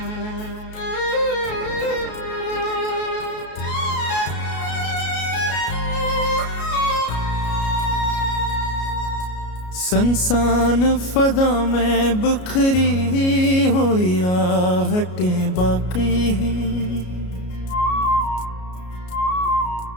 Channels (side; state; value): right; late; 33 ms